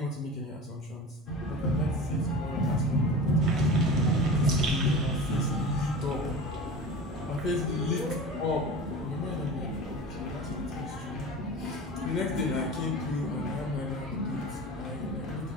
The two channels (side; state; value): both; normal; correlation 0.34